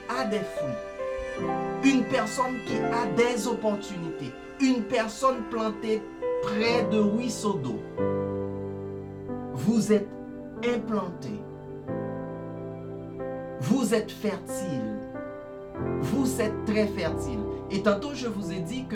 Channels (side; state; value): both; identical; correlation 1.00